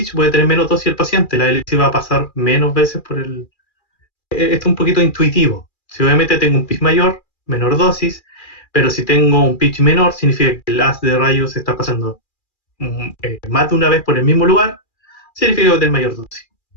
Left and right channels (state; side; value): late; right; 2.4 ms